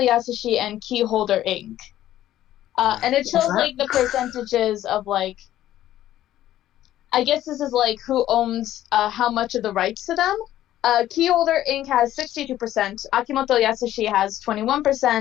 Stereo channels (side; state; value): right; quieter; 13.1 dB